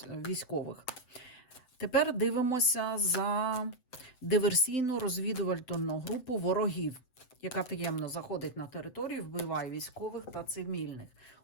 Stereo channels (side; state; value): right; late; 7.8 ms